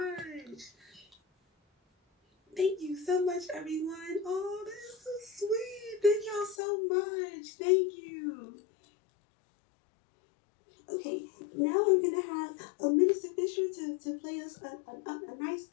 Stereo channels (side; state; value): right; drops out; at 6.6 s